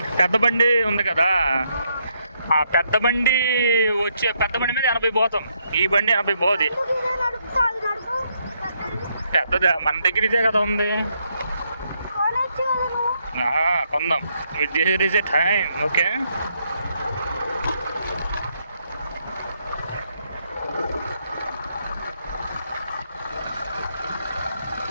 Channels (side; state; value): both; inverted; correlation -0.76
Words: పెద్ద బండి ఉంది కదా, ఆ పెద్ద బండి మీద 80 పోతాం, ఈ బండి 80 పోదు. పెద్దదా మన దగ్గర ఇదే కదా ఉంది, కొందాం. This is a time, okay?